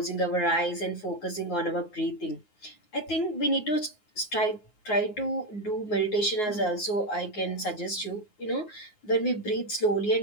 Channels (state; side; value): late; right; 9.5 ms